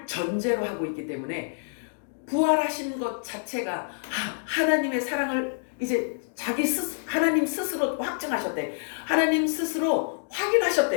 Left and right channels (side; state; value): right; silent; digital silence